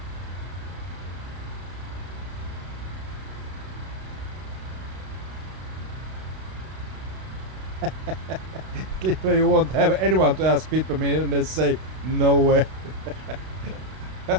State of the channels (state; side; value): late; left; 32 ms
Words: Clipper, you won't have anyone to ask fit me and they say no way.